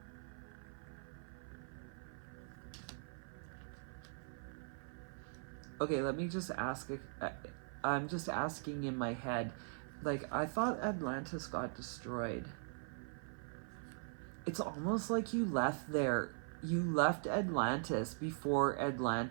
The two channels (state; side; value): silent; left; 50 dB below the other